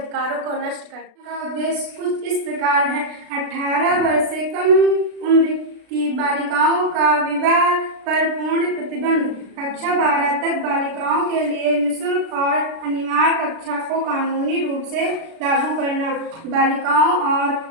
को नष्ट करती है। का उद्देश्य कुछ इस प्रकार है। 18 वर्ष से कम उम्र की बालिकाओं का विवाह पर पूर्ण प्रतिबंध। कक्षा 12 तक बालिकाओं के लिए निःशुल्क और अनिवार्य कक्षा को कानूनी रूप से लागू करना। बालिकाओं और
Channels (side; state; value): left; late; 36 ms